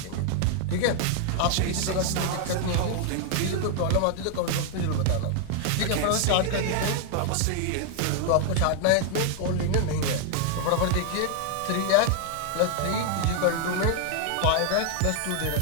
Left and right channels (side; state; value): both; different; correlation 0.00